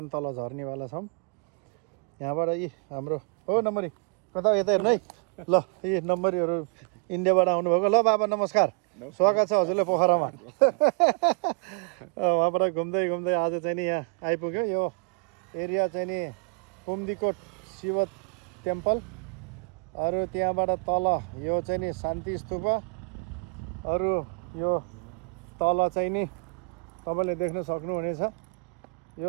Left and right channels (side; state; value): left; quieter; 39.6 dB